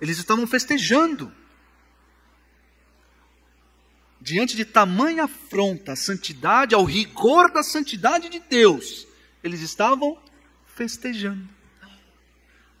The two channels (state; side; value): identical; both; correlation 1.00